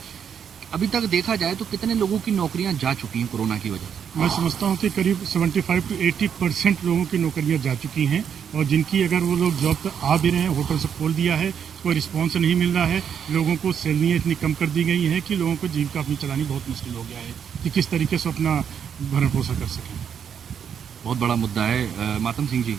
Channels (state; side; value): quieter; left; 7.9 dB